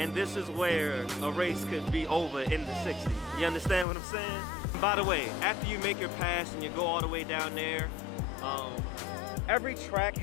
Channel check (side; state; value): right; drops out; at 3.9 s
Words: this is where a race could be over in the 60s. You understand what I'm saying? By the way, after you make your pass and you go all the way down there, every track